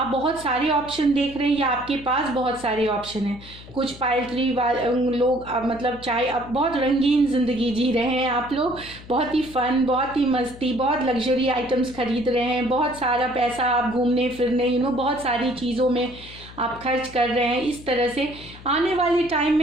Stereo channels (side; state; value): left; noise; hum, 18 dB below the sound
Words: बहुत सारे ऑप्शन देख रहे हैं या आपके पास बहुत सारे ऑप्शन हैं। कुछ पाइल 3 लोग मतलब चाहे अब बहुत रंगीन ज़िंदगी जी रहे हैं, आप लोग बहुत ही फन, बहुत ही मस्ती, बहुत लग्जरी आइटम्स खरीद रहे हैं, बहुत सारा पैसा आप घूमने फिरने बहुत सारी चीज़ों में आप खर्च कर रहे हैं। इस तरह से आने वाले टाइम